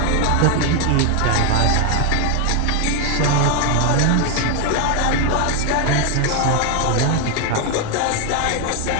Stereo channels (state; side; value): different; both; correlation 0.01